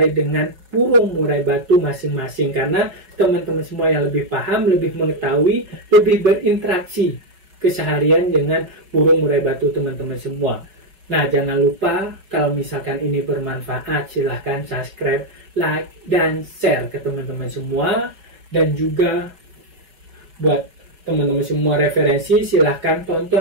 dengan burung murai batu masing-masing. Karena teman-teman semua yang lebih paham, lebih mengetahui, lebih berinteraksi keseharian dengan burung murai batu teman-teman semua. Nah, jangan lupa kalau misalkan ini bermanfaat, silahkan subscribe, like, dan share ke teman-teman semua. Dan juga buat teman-teman semua referensi, silahkan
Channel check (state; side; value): late; left; 5.5 ms